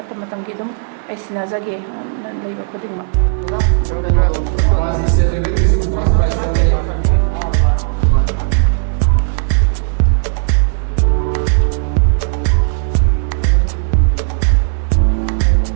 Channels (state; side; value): silent; left; digital silence